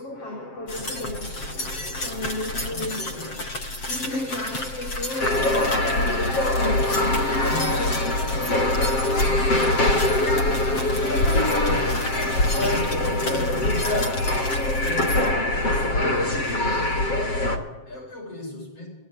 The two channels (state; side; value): late; right; 7.5 ms